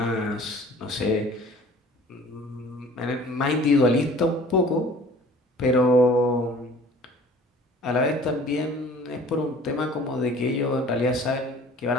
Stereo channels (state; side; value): normal; both; correlation 0.48